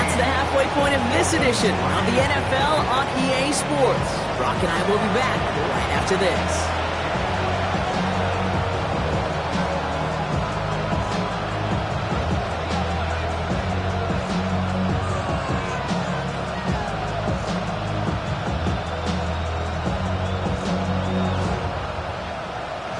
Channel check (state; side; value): identical; both; correlation 1.00